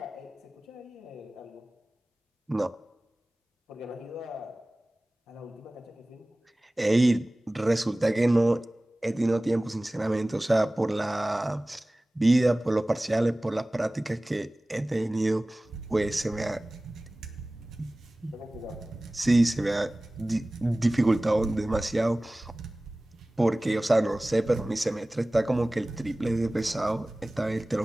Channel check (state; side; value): normal; both; correlation 0.98